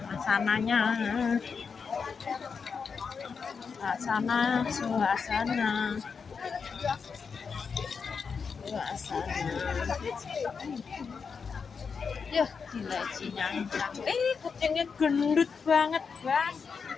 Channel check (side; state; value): right; quieter; 5.7 dB